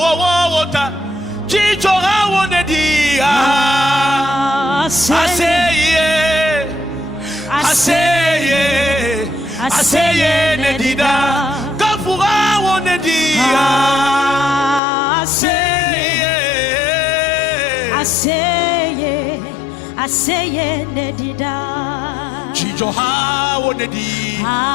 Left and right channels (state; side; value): drops out; right; at 14.8 s